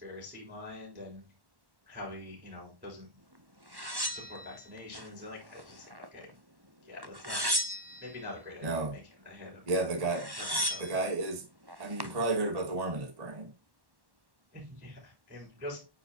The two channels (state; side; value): late; left; 1.1 ms